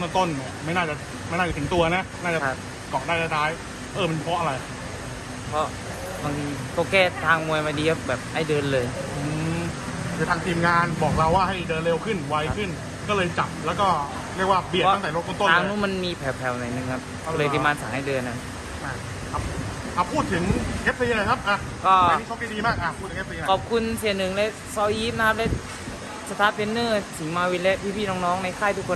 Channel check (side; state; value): both; identical; correlation 1.00